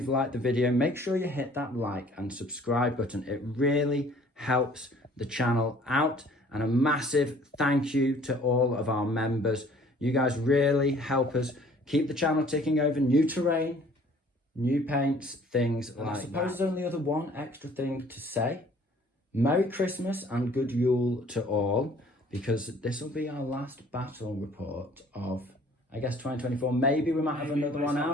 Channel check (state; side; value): normal; both; correlation 0.55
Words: liked the video, make sure you hit that like and subscribe button. It really helps the channel out. And a massive thank you to all of our members. You guys really help us keep the channel ticking over. New terrain, new paints, things like that. I suppose there's only other one extra thing to say. Merry Christmas and good Yule to all, because this will be our last battle report of, I guess, 2024. Maybe we might have another one